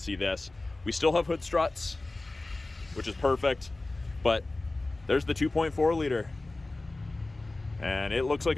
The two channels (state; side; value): quieter; right; 3.0 dB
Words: see this. We still have hood struts, which is perfect, but there's the 2.4 liter. And it looks like